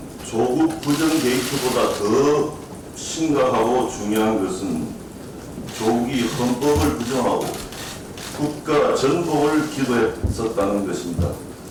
조국 부정 게이트보다 더 심각하고 중요한 것은 조국이 헌법을 부정하고 국가 전복을 기도했었다는 것입니다.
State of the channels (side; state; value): both; identical; correlation 1.00